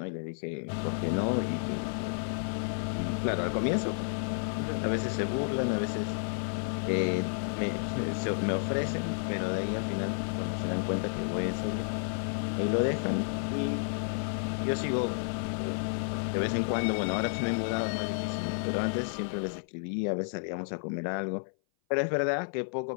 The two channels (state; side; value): silent; right; 56 dB below the other